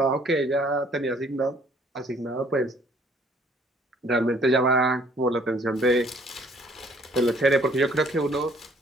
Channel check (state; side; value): normal; both; correlation 0.60